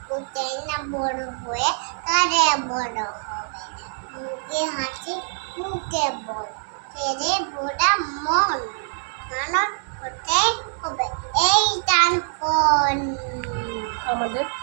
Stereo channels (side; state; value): left; silent; digital silence